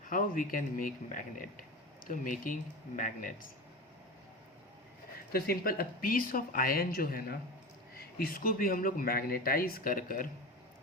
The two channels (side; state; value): both; normal; correlation 0.27